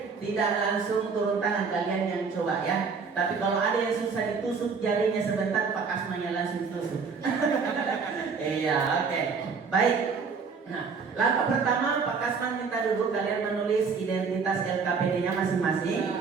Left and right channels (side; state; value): left; quieter; 5.3 dB